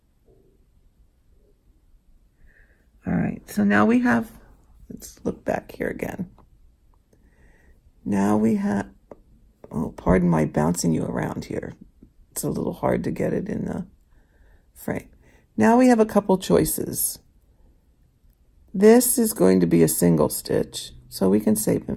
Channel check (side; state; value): both; identical; correlation 1.00